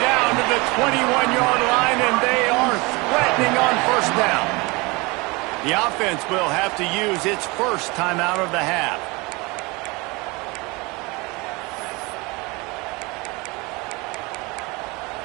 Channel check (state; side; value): quieter; left; 25.6 dB